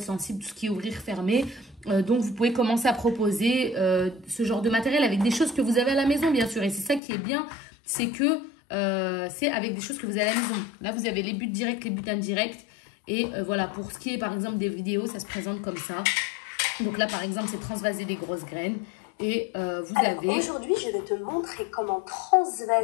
sensible, tout ce qui est ouvrir, fermer. Donc, vous pouvez commencer à proposer ce genre de matériel avec des choses que vous avez à la maison, bien sûr. Et c'est ça qui est bien, c'est que c'est avec des choses que vous avez à la maison. Là, vous avez les buts directs, les buts indirects. Et voilà, pour ce qui est par exemple des vidéos, ça se présente comme ça. Donc là, par exemple, c'est transvaser des grosses graines. Et vous avez... Aujourd'hui, je vais te montrer comment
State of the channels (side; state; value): right; drops out; at 7.0 s